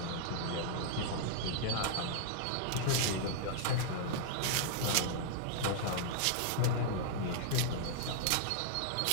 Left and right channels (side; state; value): both; different; correlation -0.01